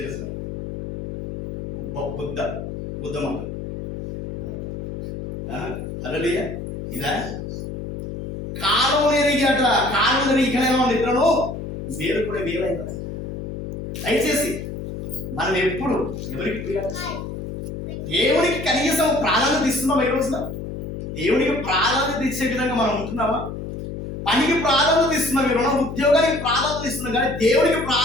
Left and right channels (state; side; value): noise; left; hum, 7 dB below the sound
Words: బుద్ధ మాటలు హల్లెలూయా. ఇదా కాలం ఎరిగాట, కాలం ఎరిగి ఇక్కడ ఇద్దరు మీరు కూడా వేరైందా. దయచేసి మనం ఎప్పుడు ఎవరికి దేవునికి కనీసం ప్రాధాన్యత ఇస్తున్నాం. ఈ రోజున దేవునికి ప్రాధాన్యత ఇచ్చే విధంగా మనం ఉంటున్నామా? పనికి ప్రాధాన్యత ఇస్తున్నాం, మీరు ఉద్యోగానికి ప్రాధాన్యత ఇస్తున్నాం, కానీ దేవునికి